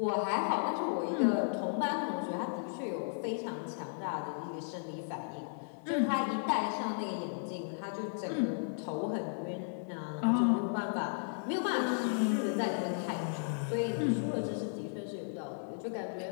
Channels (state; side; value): silent; right; digital silence